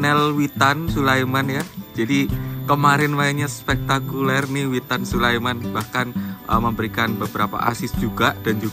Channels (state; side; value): identical; both; correlation 1.00